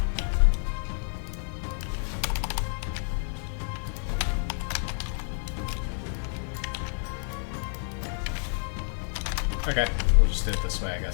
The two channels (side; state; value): right; silent; 59 dB below the other